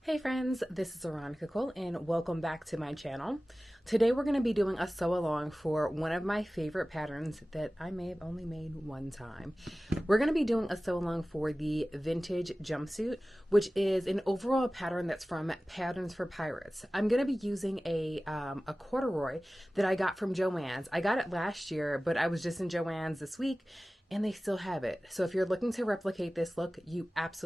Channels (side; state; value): both; normal; correlation 0.97